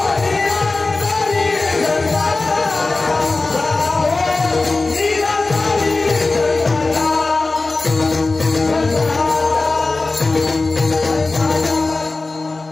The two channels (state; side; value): quieter; right; 3.4 dB